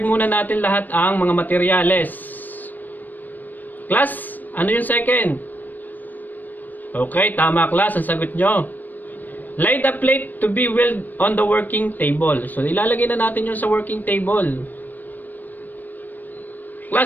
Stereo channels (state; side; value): late; right; 0.088 ms